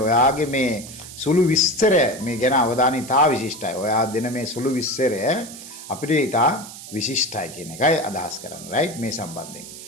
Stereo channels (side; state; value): right; noise; hiss, 14 dB below the sound